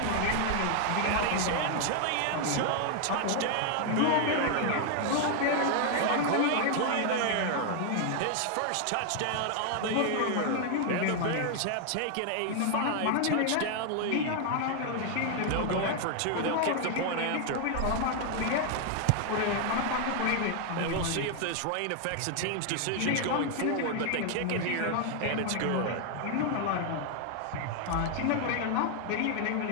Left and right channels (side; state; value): both; different; correlation 0.00